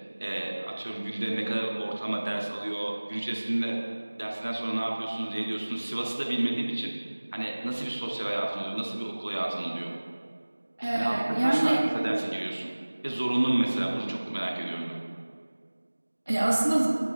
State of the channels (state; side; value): inverted; both; correlation -1.00